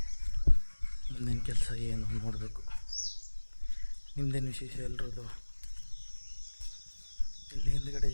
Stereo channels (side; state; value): both; inverted; correlation -1.00